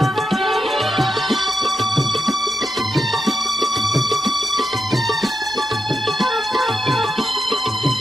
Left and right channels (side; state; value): both; normal; correlation 0.86